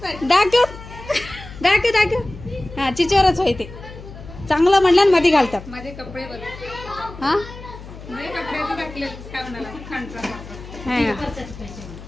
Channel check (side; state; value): left; noise; hum, 15 dB below the sound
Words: दाखव दाखव दाखव। हा चिचोरच होय ते चांगलं म्हणलं ना मध्ये घालतात माझे कपडे बघ। हा माझे कपड्याचं टाकले काय म्हणाला खांडचा